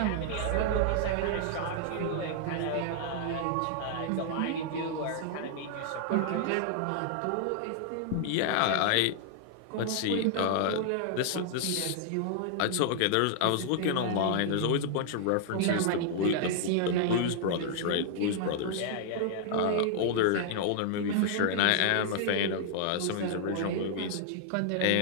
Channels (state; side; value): different; both; correlation -0.01